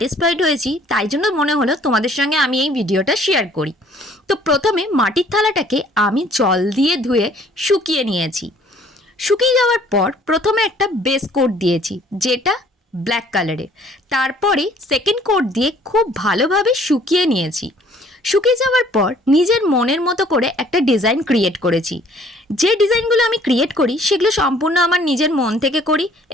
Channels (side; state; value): both; normal; correlation 0.57